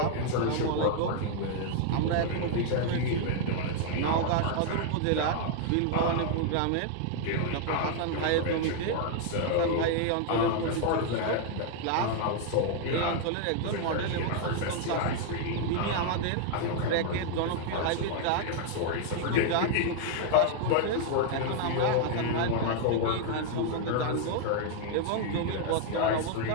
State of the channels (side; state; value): both; different; correlation 0.00